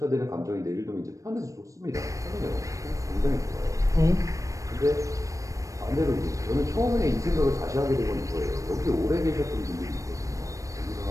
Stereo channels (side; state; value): left; late; 0.16 ms